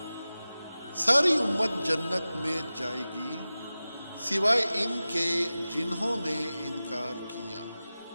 ساری امت جنت میں جائے گی سوائے ان کے جنہوں نے انکار کیا۔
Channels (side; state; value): both; inverted; correlation -0.96